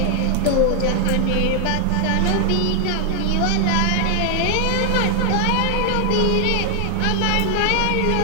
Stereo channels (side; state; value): both; different; correlation 0.00